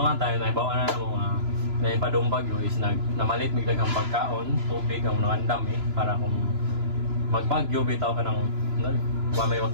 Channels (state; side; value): late; left; 3.0 ms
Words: nga tayo, naibawa na ng mga naipadong bagyo is namalit biglang ang pagkaon, tubig ang mga dami para kung magbagyo, bitaw ka ng may